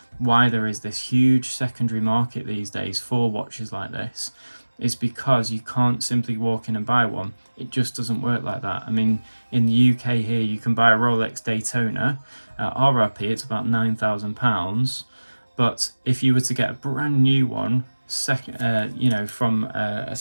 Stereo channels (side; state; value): both; inverted; correlation -1.00